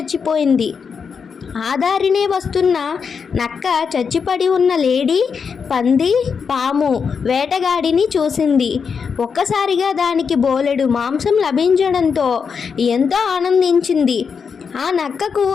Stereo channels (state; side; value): quieter; right; 6.0 dB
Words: ఆ దారినే వస్తున్న నక్క చచ్చిపడి ఉన్న లేడీ, పంది, పాము, వేటగాడిని చూసింది. ఒక్కసారిగా దానికి బోలెడు మాంసం లభించడంతో ఎంతో ఆనందించింది. ఆ నక్కకు